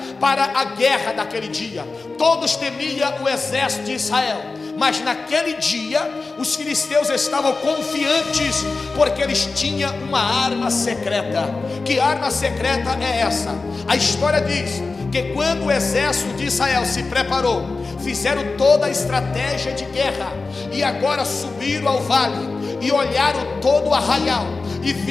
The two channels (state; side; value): quieter; right; 3.9 dB